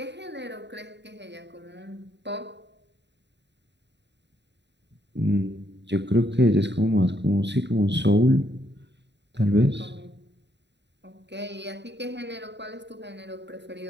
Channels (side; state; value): left; late; 0.51 ms